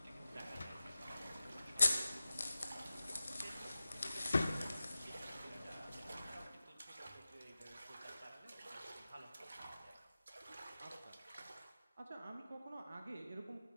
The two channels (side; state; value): both; inverted; correlation -0.95